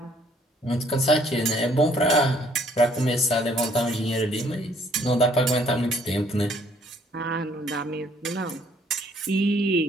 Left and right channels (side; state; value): both; normal; correlation 0.63